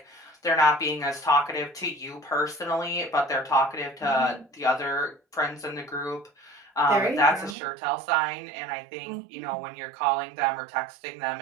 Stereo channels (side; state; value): left; drops out; at 7.6 s